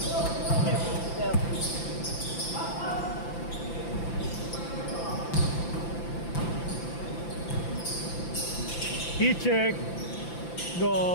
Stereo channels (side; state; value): right; late; 5.9 ms